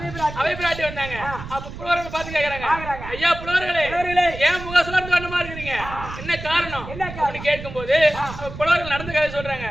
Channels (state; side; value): noise; right; rumble, 11 dB below the sound